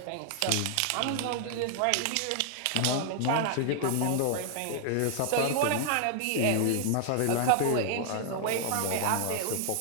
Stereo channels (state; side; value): different; both; correlation 0.00